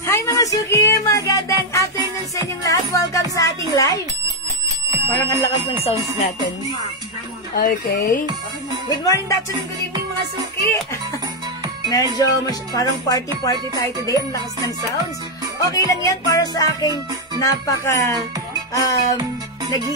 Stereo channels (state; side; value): normal; both; correlation 0.03